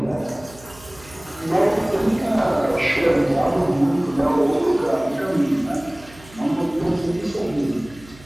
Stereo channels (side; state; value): right; noise; hum, 22 dB below the sound